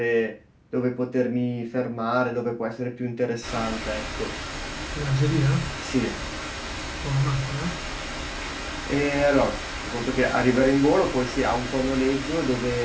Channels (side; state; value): both; identical; correlation 1.00